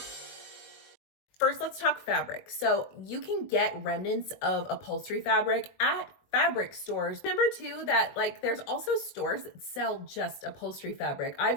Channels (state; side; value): late; right; 21 ms